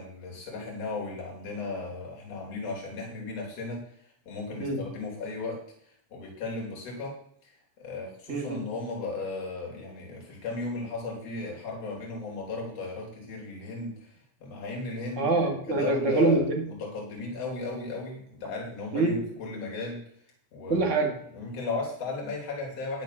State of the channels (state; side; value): late; right; 8.0 ms